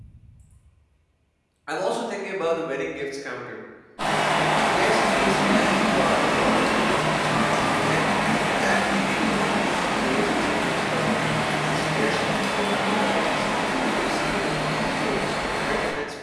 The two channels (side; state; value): both; identical; correlation 1.00